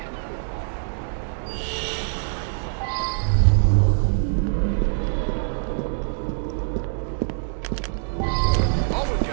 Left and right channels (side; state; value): left; silent; digital silence